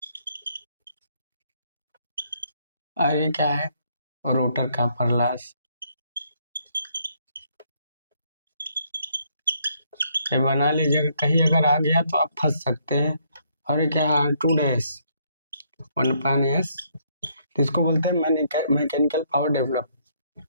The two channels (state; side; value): inverted; both; correlation -0.70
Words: और ये क्या है, रोटर कॉपर लॉस। ये बना लीजिएगा, कहीं अगर आ गया तो आप फंस सकते हैं। और ये क्या है, R2 डैश 1/S, इसको बोलते हैं mechanical power develop.